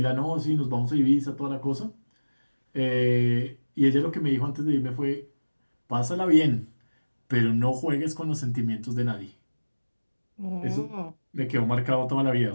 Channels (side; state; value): both; inverted; correlation -1.00